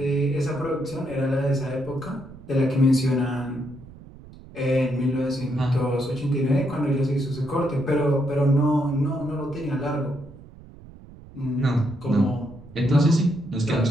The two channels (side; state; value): right; noise; rumble, 19 dB below the sound